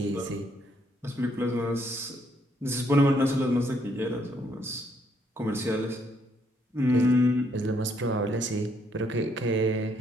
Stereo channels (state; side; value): normal; both; correlation 0.71